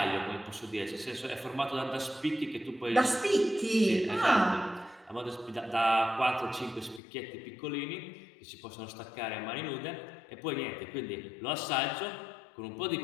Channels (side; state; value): right; drops out; at 7.0 s